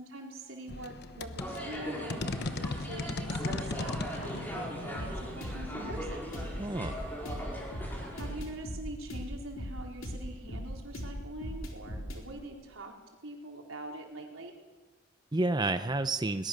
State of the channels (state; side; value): normal; both; correlation 0.58